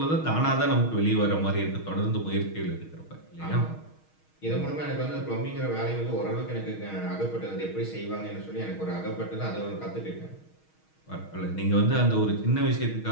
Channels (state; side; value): late; right; 6.4 ms